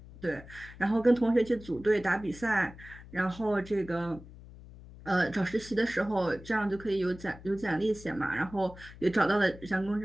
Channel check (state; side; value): noise; left; hum, 18 dB below the sound